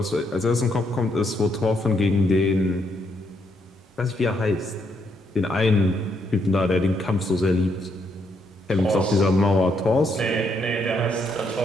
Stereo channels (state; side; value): normal; both; correlation 0.75